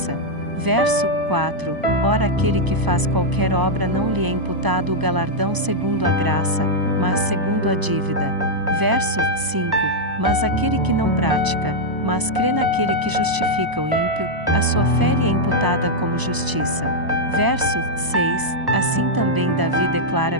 Verso 4. Ora, aquele que faz qualquer obra não lhe é imputado o galardão segundo a graça, mas segundo a dívida. Verso 5. Mas aquele que não pratica, mas crê naquele que justifica o ímpio, a sua fé lhe é imputada como justiça. Verso 6. Assim também Davi declara:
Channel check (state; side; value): late; left; 1.0 ms